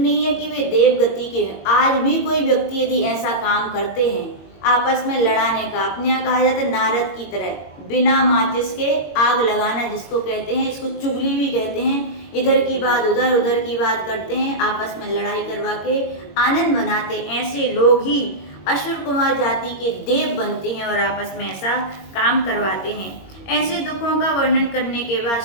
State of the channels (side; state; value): right; late; 21 ms